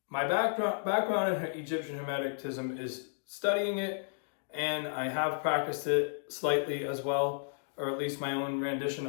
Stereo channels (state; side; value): silent; right; digital silence